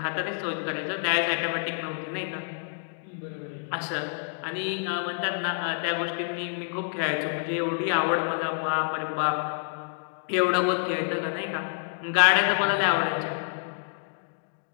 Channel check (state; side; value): silent; right; digital silence